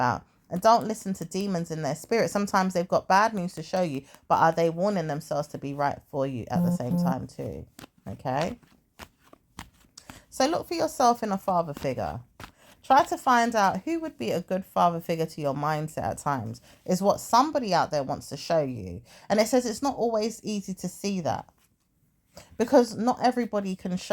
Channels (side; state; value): both; identical; correlation 1.00